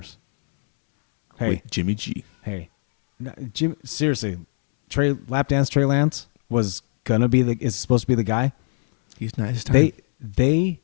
Hey, With Jimmy G. hey, Jim. Seriously, Trey Lance was gonna be is supposed to be the guy. He's not his time. They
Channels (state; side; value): silent; right; 65 dB below the other